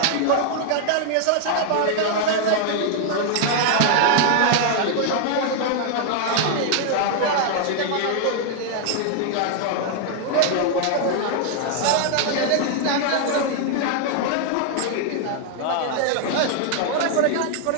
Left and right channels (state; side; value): different; both; correlation 0.00